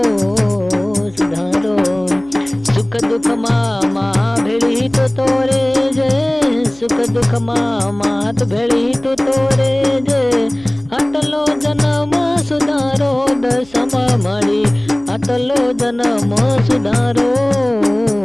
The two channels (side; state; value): right; noise; hum, 26 dB below the sound